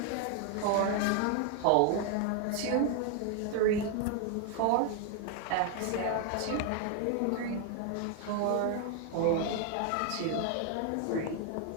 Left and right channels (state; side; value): different; both; correlation 0.00